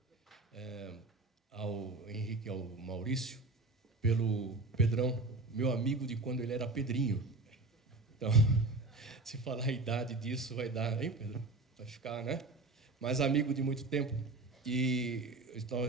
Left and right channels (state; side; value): quieter; left; 3.1 dB